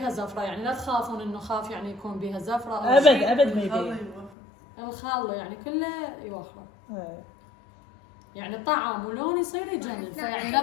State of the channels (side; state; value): right; drops out; at 4.3 s